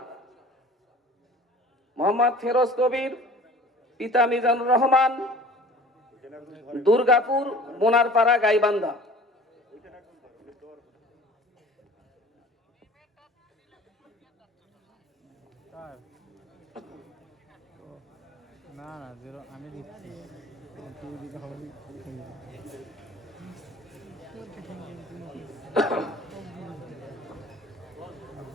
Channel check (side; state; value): both; normal; correlation 0.46